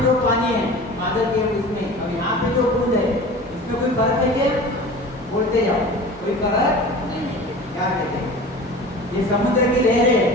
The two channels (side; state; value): both; normal; correlation 0.38